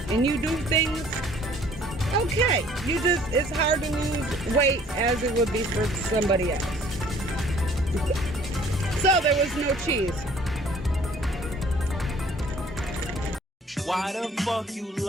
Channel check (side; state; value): both; normal; correlation 0.55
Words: and you do things, okay, it's hard to lose weight as it would be for somebody else. So there was no cheese. Why the fuck you